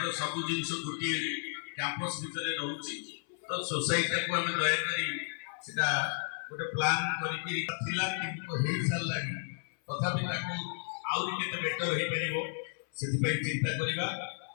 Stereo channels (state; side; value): silent; right; 56 dB below the other